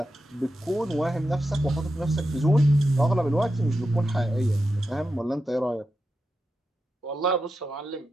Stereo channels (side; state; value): both; normal; correlation 0.89